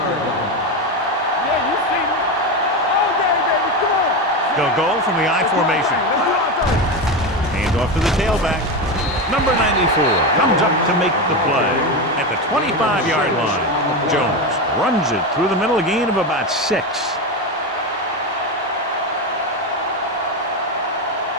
line. Yeah, you see me. All day, baby. Come on. They'll go from the I formation. Hand off to the tailback. Number 94 comes up to make the play at the 25-yard line. Jones runs it through the middle, a gain of about 6.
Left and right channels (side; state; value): both; normal; correlation 0.16